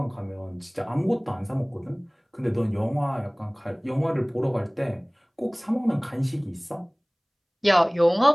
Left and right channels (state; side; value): identical; both; correlation 1.00